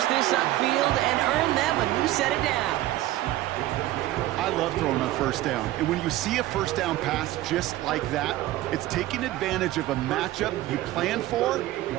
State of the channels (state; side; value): quieter; left; 15.6 dB